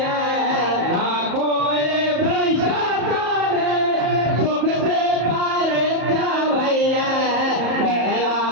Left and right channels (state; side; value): late; left; 34 ms